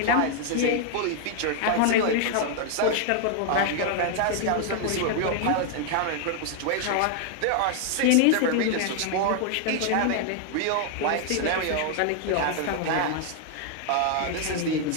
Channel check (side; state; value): both; different; correlation 0.00